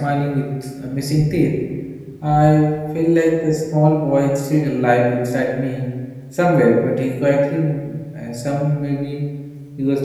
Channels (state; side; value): identical; both; correlation 1.00